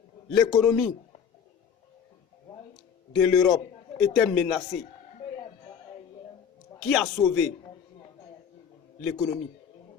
l'économie de l'Europe était menacée, qui a sauvé l'économie?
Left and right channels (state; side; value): quieter; right; 7.4 dB